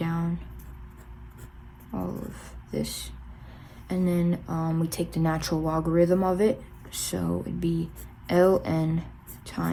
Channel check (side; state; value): both; identical; correlation 1.00